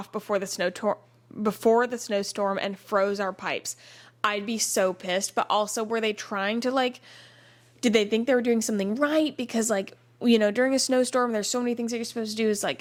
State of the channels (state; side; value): identical; both; correlation 1.00